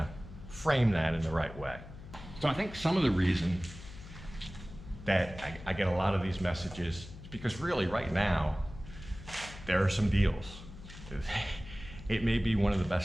frame that in the right way. So I think some of the reason that I get a lot of these messages is because really right now, there are some deals. It may be one of the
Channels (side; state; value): left; noise; hum, 15 dB below the sound